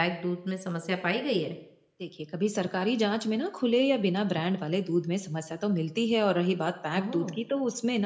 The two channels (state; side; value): identical; both; correlation 1.00